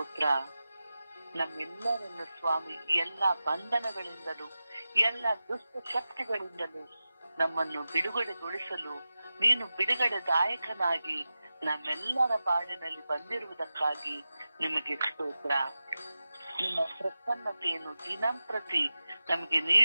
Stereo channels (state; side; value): inverted; both; correlation -0.94